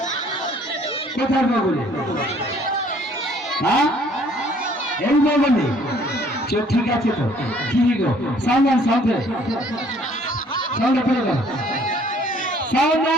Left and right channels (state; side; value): normal; both; correlation 0.59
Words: কোথায় বগলে? হ্যাঁ, এই বগলে। ঠিক আছে তো, কি গো সাউন্ড সাউন্ডে সাউন্ড ফেলে গেল। সাউন্ড